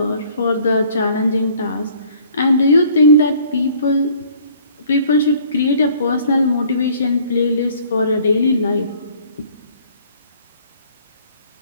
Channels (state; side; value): inverted; both; correlation -0.56